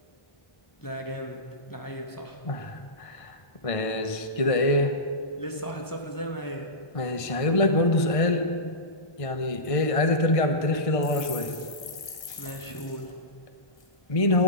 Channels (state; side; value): late; right; 1.2 ms